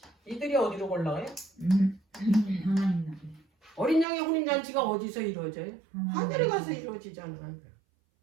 이들이 어디로 올라가요? 어린 양의 혼인잔치가 어디서 이루어져요? 하늘에 가서 이루어지잖아요.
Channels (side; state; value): left; drops out; at 4.0 s